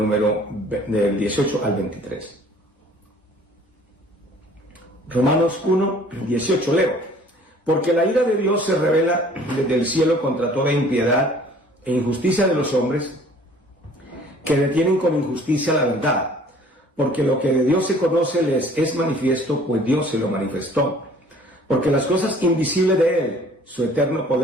18 al 23. Romanos 1, 18, leo. Porque la ira de Dios se revela desde el cielo contra toda impiedad e injusticia de los hombres que detienen con injusticia la verdad. Porque lo que de Dios se conoce les es manifiesto, pues Dios se lo manifestó. Porque las cosas invisibles de Él, su eterno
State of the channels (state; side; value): normal; both; correlation 0.53